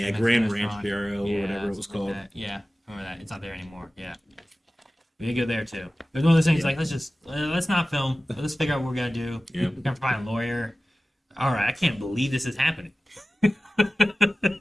Mexican Grand Ranch restaurant. Bureau or whatever it was something like called. that. Yeah, remember that. It's not there anymore. Yeah. We did go there too. There's one of those things like, let's not film. Let's figure out what we're going to do. Yeah. We're going to find a lawyer. All right, I can't believe this is happening.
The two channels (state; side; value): normal; both; correlation 0.96